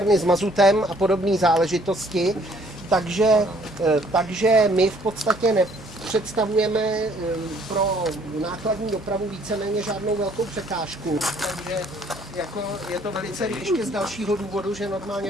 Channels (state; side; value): normal; both; correlation 0.61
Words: s mazutem a podobné záležitosti. Takže my v podstatě nepředstavujeme pro nákladní dopravu víceméně žádnou velkou překážku. Takže jako je to velice ještě z dalšího důvodu, že